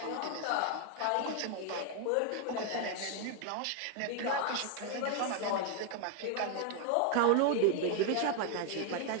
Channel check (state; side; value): different; both; correlation 0.01